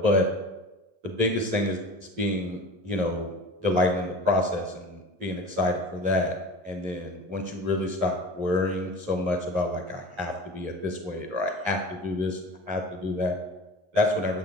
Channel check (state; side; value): late; left; 11 ms